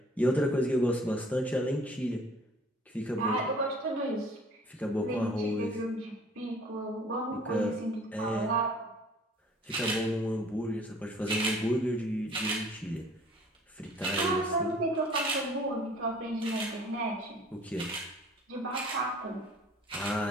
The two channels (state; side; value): normal; both; correlation 0.52